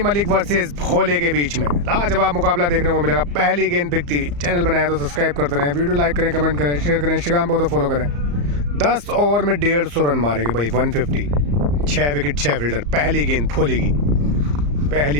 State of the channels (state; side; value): late; left; 34 ms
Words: वर्सेस भोले के बीच में। लाजवाब मुकाबला देखने को मिलेगा। पहली गेंद पिक थी। चैनल बनाया तो सब्सक्राइब करते रहें, वीडियो लाइक करें, कमेंट करें, शेयर करें, इंस्टाग्राम पर तो फॉलो करें। 10 ओवर में 150 रन मारेंगे भाई, 150, 6 विकेट 6 फील्डर। पहली गेंद भोले की,